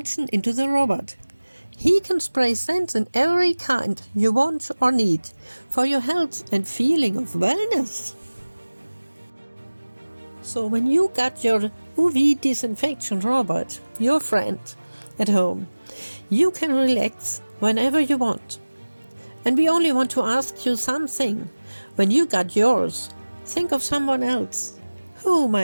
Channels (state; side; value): inverted; both; correlation -1.00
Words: into the robot. He can spray scents in every kind you want or need for your health and feeling of wellness. So when you got your UV disinfection robot, your friend, at home, you can relax whenever you want. And we only want to ask you something. When you got yours, think of someone else who